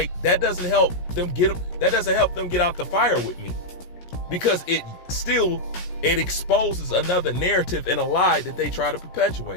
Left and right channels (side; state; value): right; late; 17 ms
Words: that doesn't help them get out the fire with me, because it exposes another narrative and a lie that they try to